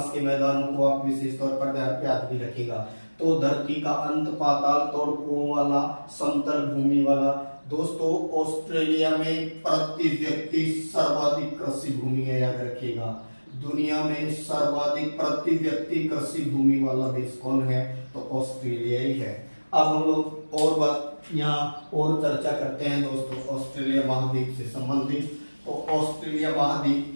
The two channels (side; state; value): both; inverted; correlation -1.00